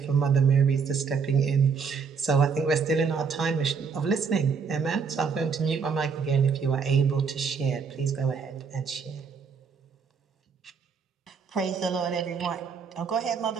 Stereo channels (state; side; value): quieter; left; 5.8 dB